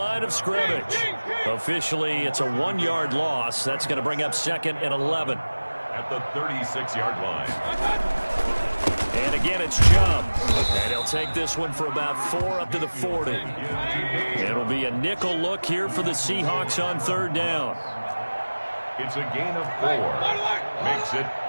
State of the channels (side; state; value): both; inverted; correlation -1.00